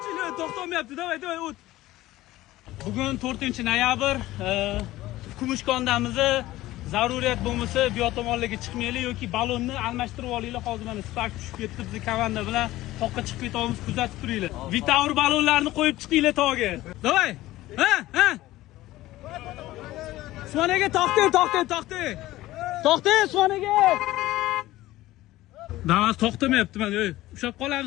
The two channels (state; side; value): quieter; right; 16.6 dB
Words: To'xtamayapti. Davay, o't. Bugun 4-noyabr, Kumushkondamiz. Zaruriyat bo'lmasa, bu yotomonlarga chiqmaylik yoki balonni almashtirib olinglar. Hozir mana Spark tushib ketdi, biz komanda bilan toqqa chiqib ketamiz, kuzatib turinglar. Vitaur balonlarni qo'yib chiqinglar tog'ga. Davay. Ha. Usmonaga to'xting. Usmonaga. Damas to'xtamayapti mana. Ushab